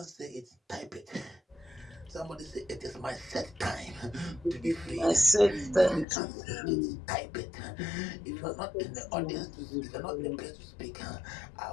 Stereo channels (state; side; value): drops out; right; at 6.1 s